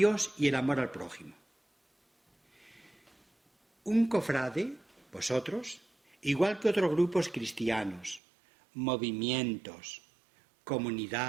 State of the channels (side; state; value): left; drops out; at 8.2 s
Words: y el amor al prójimo. Un cofrade, vosotros, igual que otros grupos cristianos, movimientos,